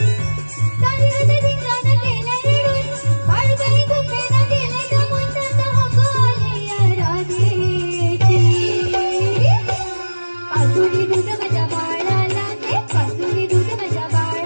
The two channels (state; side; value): inverted; both; correlation -1.00